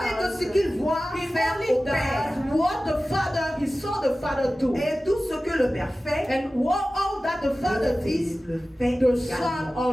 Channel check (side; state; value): both; normal; correlation 0.96